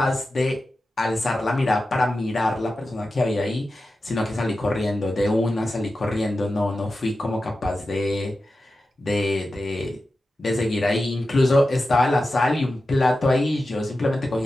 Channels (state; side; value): normal; both; correlation 0.92